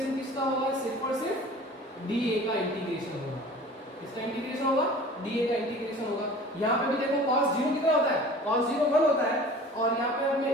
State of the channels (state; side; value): normal; both; correlation 0.43